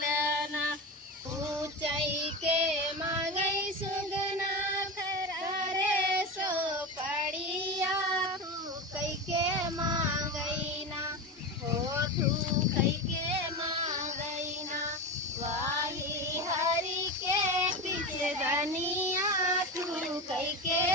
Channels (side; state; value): both; normal; correlation 0.22